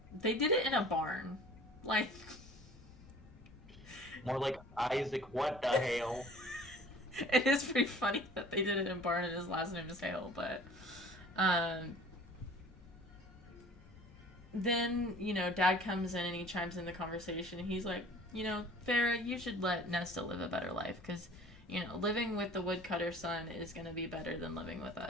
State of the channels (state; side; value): normal; both; correlation 0.47